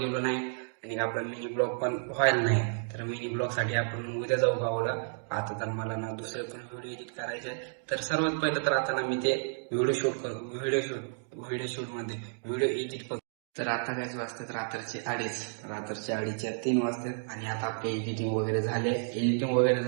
नाही, आणि आपला मिनी ब्लॉग पण व्हायला नाही. तर मिनी ब्लॉग साठी आपण उद्या जाऊ गावाला. आता तर मला ना दुसरे पण व्हिडिओ एडिट करायचे. तर सर्वात पहिलं तर आता ना मी ते व्हिडिओ शूट करू, व्हिडिओ शूट मध्ये व्हिडिओ एडिट करू. तर आता काय वाजतात रात्रीचे 2:30च्या 3 वाजतात, आणि आता आपले एडिटिंग वगैरे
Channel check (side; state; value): left; silent; digital silence